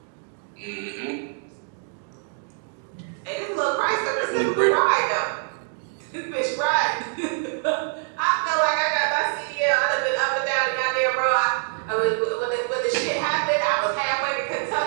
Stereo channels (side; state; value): left; silent; 62 dB below the other